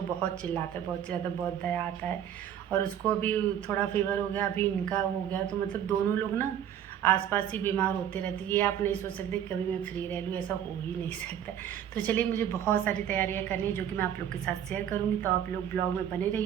बहुत चिल्लाता है, बहुत दया आता है। और उसको अभी थोड़ा फीवर हो गया, अभी इनका हो गया, तो मतलब दोनों लोग ना आसपास ही बीमार होते रहते। ये आप नहीं सोच सकते कभी मैं फ्री रह लूँ, ऐसा हो ही नहीं सकता। तो चलिए, मुझे बहुत सारी तैयारियां करनी है जो कि मैं आप लोग के साथ शेयर करूँगी, तो आप लोग ब्लॉग में बने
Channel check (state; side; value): quieter; left; 9.9 dB